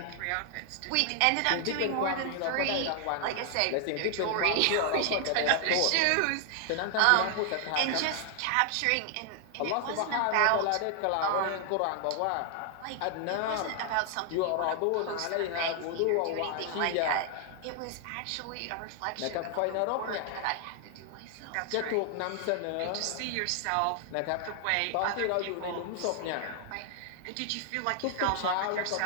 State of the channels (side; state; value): both; different; correlation 0.00